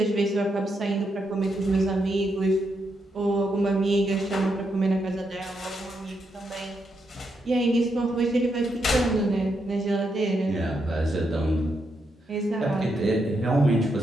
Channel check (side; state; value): both; normal; correlation 0.81